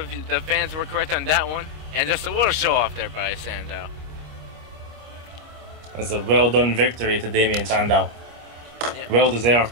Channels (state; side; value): late; left; 25 ms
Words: the fans were correct on that one. And just a little show off there by Sandow. That's a well done victory to Damien Sandow. Yeah. Well